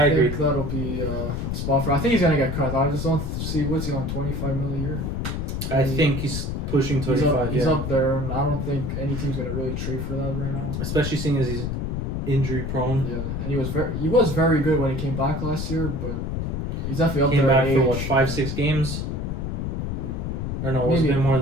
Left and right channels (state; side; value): noise; left; rumble, 3 dB below the sound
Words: agree. think that'll be a spot for. I think he's going to get cut. I just don't see what's he on $25 million a year. I think he's pushing 25. He's up there, and I don't think any team's going to really trade for that right now. Especially seeing as he's injury prone. Yeah, and he was very good when he came back last year, but he's definitely up Came there. back for what, 5-6 games? Or no, it's been more